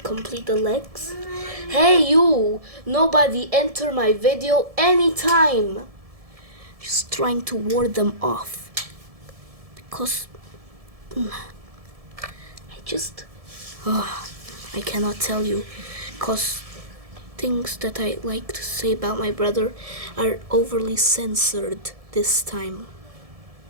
Complete the legs. Hey you! Nobody enter my video anytime! Just trying to ward them off. Because I cannot tell you. Because things that I like to say about my brother are overly censored this time.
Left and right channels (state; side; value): late; left; 1.7 ms